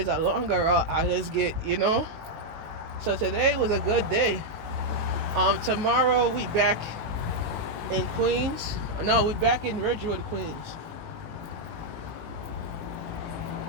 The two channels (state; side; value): late; left; 19 ms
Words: a longer route, I just get, So today was a good day. Tomorrow we back in Queens. No, we back in Ridgewood, Queens.